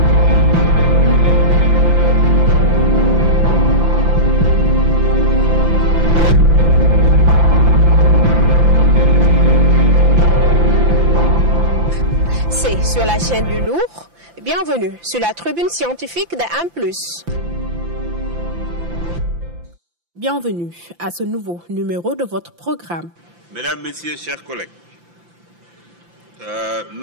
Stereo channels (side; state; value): left; late; 5.8 ms